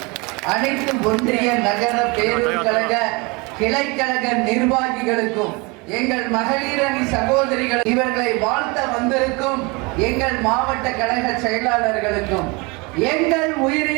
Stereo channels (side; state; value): left; quieter; 27.6 dB